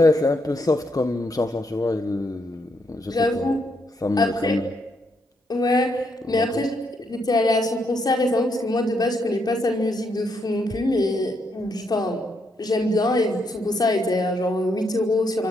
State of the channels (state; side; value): normal; both; correlation 0.77